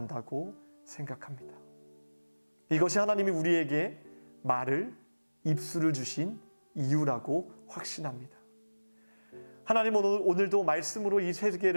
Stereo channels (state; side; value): inverted; both; correlation -1.00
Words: 생각합니다. 이것이 하나님이 우리에게 말을, 입술을 주신 이유라고 확신합니다. 하나님은 오늘도 말씀으로 이